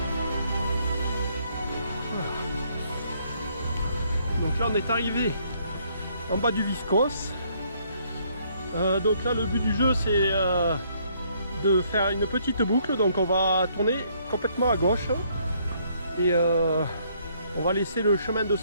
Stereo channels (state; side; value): inverted; both; correlation -0.67